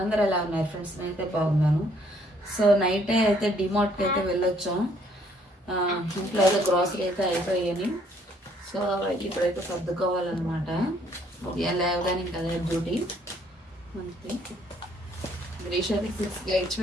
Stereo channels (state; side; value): normal; both; correlation 0.65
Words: అందరూ ఎలా ఉన్నారు friends? నేనైతే బాగున్నాను. సో నైటే అయితే డిమార్ట్కి అయితే వెళ్ళొచ్చాం. ఇంట్లో అయితే గ్రాసరీ అయితే అయిపోయాయని. సో ఇప్పుడైతే సర్దుకోవాలన్నమాట. ఉదయం లేవగానే ఇంకా అదే డ్యూటీ మనకి. గ్రీష్ అయితే 6కి